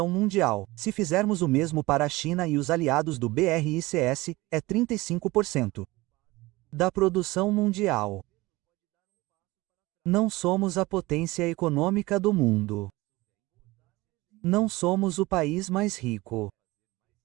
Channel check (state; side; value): quieter; left; 20.4 dB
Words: mundial. Se fizermos o mesmo para a China e os aliados do BRICS, é 35% da produção mundial. Não somos a potência econômica do mundo. Não somos o país mais rico.